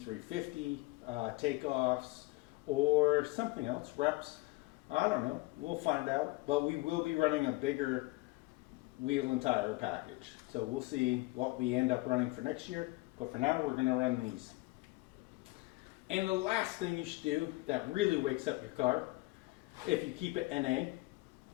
takeoffs or something else, reps. I don't know. We'll find out. But we will be running a bigger wheel and tire package. So we'll see what we end up running for next year. But for now, we're going to run these. And the last thing you should do that really wakes up your car, if you keep it NA,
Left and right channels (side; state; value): right; quieter; 22.3 dB